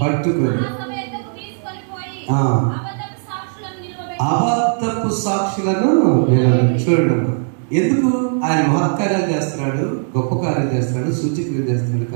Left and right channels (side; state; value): left; silent; 67 dB below the other